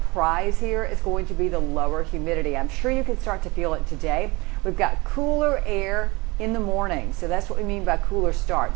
prize here is going to be the lower humidity. I'm sure you can start to feel it today. We've got cooler air in the morning, so that's what we mean by cooler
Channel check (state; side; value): quieter; left; 24.4 dB